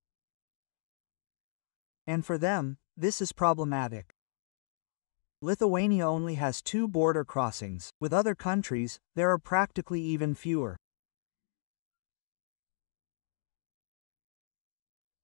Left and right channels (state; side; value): silent; right; digital silence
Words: And for them, this is problematic. Lithuania only has 2 border crossings. With other countries, there are practically even fewer.